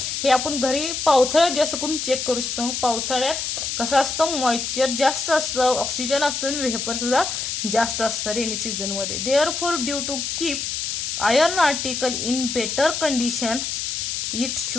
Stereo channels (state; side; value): noise; left; hiss, 3 dB below the sound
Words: हे आपण घरी पावसाळ्यात जास्त करून चेक करू शकतो. पावसाळ्यात कसं असतं, मॉइश्चर जास्त असतं, ऑक्सिजन असतो आणि व्हेपर सुद्धा जास्त असतं रेनी सीझन मध्ये. Therefore due to keep iron article in better condition it